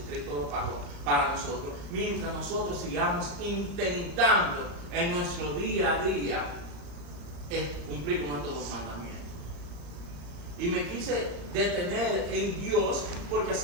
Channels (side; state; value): left; late; 34 ms